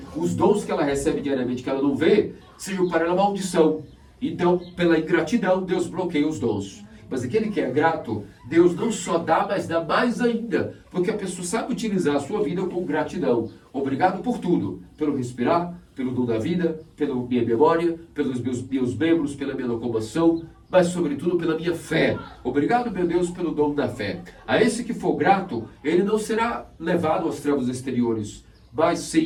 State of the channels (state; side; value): identical; both; correlation 1.00